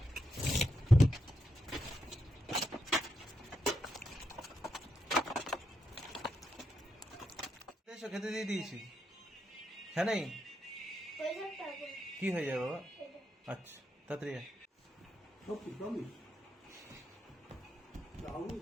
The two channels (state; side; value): normal; both; correlation 0.83